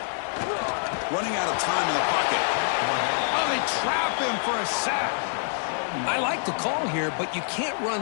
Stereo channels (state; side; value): silent; right; digital silence